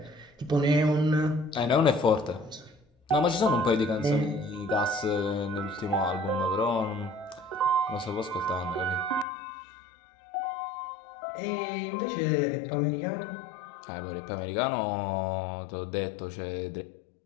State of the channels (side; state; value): right; drops out; at 9.2 s